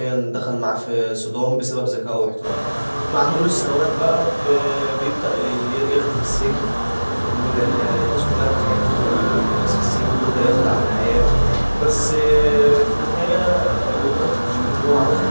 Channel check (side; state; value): both; inverted; correlation -1.00